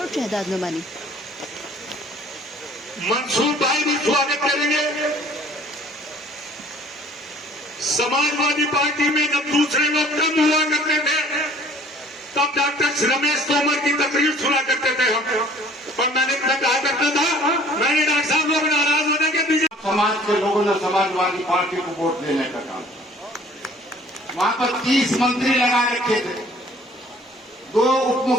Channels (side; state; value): both; normal; correlation 0.53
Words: शहजाद नुमानी। मंसूर भाई भी स्वागत करेंगे। समाजवादी पार्टी में जब दूसरे लोग कम हुआ करते थे तब डॉक्टर रमेश तोमर की तकरीर सुना करते थे हम, और मैंने कहा करता था मैंने डॉक्टर साहब लोग नाराज होने के पीछे समाज के लोगों ने समाजवादी पार्टी को वोट देने का काम। वहां पर 30 मंत्री लगा रखे थे, 2 उप